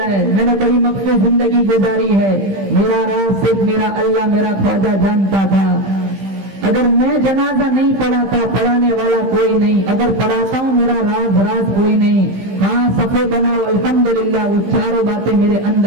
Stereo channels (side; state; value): left; late; 15 ms